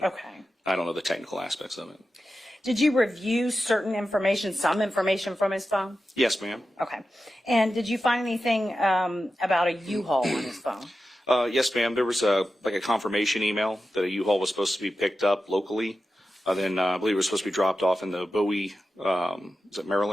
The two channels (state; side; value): normal; both; correlation 0.92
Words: okay. I don't know the technical aspects of it. Did you review certain information, some information from his phone? Yes, ma'am. Okay. And did you find anything about a U-Haul on his phone? Yes, ma'am. There was a confirmation email that a U-Haul was supposed to be picked up locally. Then I believe it was supposed to be dropped off in the Bowie, is it